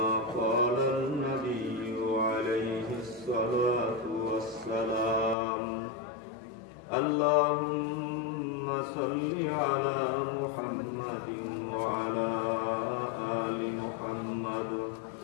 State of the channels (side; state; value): right; drops out; at 5.4 s